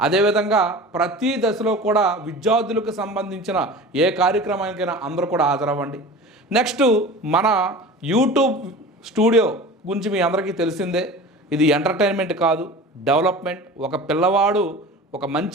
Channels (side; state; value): both; normal; correlation 0.36